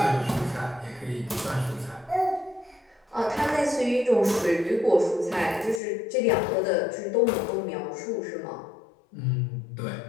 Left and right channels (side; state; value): right; drops out; at 5.8 s